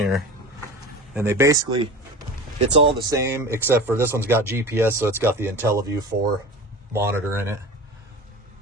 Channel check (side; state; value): both; normal; correlation 0.34